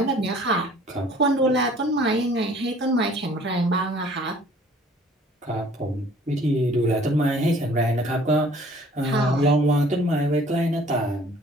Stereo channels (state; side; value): normal; both; correlation 0.54